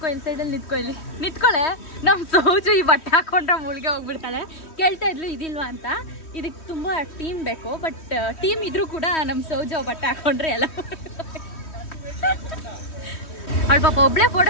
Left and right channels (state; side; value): late; right; 3.1 ms